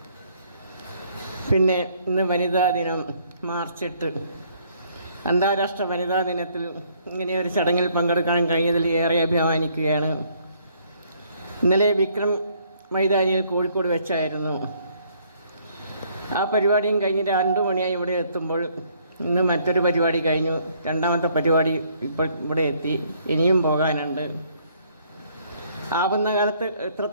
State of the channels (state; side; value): inverted; both; correlation -0.65